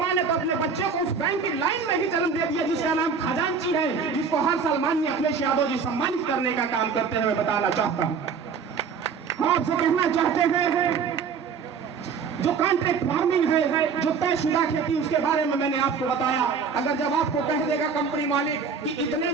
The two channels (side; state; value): left; quieter; 5.8 dB